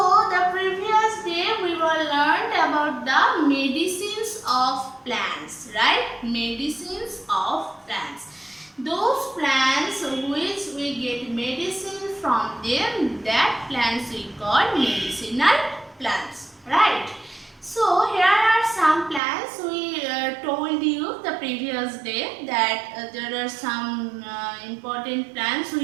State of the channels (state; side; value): drops out; left; at 19.2 s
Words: the previous day we were learned about the medicines of plants, right? Medicines of plants. Those plants which we get medicine from them, that plants we call medicinal plants, right? So here are some plants we told you the previous day that there are some important plants